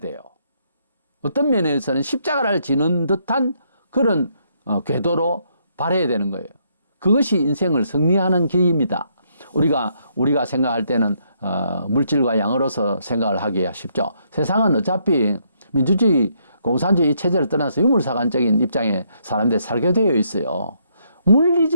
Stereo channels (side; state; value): both; inverted; correlation -0.73